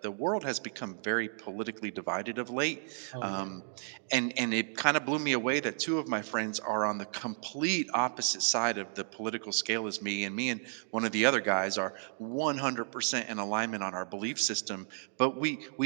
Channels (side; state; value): left; silent; digital silence